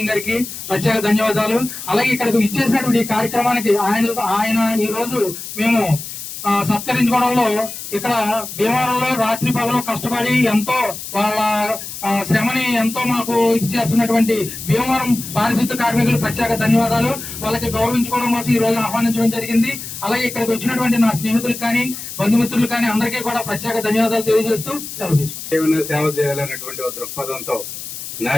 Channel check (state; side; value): noise; left; hiss, 9 dB below the sound